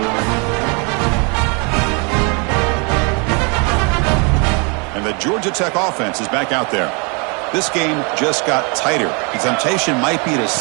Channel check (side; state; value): left; quieter; 33.6 dB